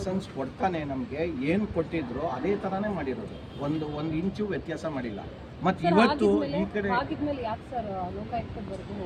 ಕೊಡ್ತಾನೆ. ನಮಗೆ ಏನು ಕೊಟ್ಟಿದ್ರು ಅದೇ ಥರನೇ ಮಾಡಿರೋದು, ಒಂದು ಇಂಚು ವ್ಯತ್ಯಾಸ ಮಾಡಿಲ್ಲ. ಮತ್ತು ಇವತ್ತು ಈ ಕಡೆ ಆಗಿದ್ಮೇಲೆ ಯಾಕೆ ಸರ್ ಲೋಕಾಯುಕ್ತದವರೆಗೂ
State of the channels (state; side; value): identical; both; correlation 1.00